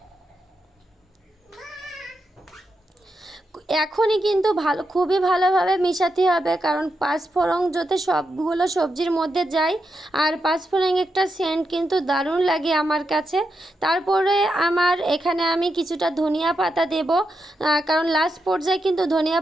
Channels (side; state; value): both; normal; correlation 0.85